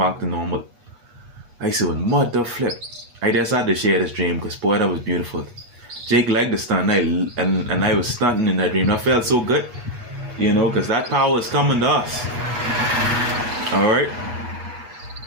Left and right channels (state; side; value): late; left; 8.3 ms